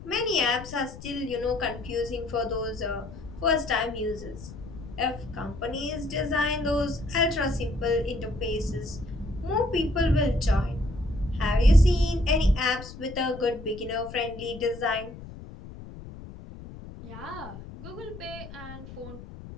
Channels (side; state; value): left; noise; rumble, 14 dB below the sound